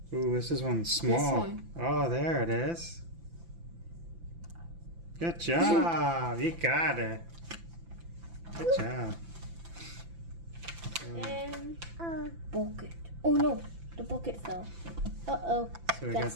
Ooh, this is one small. one. Oh, there it is. Good job. You got it. Good job. And bucket. Oh no, the bucket fell. Uh-oh. So we Got got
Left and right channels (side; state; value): left; late; 5.9 ms